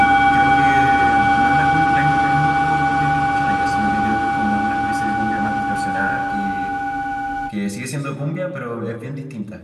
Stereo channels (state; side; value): identical; both; correlation 1.00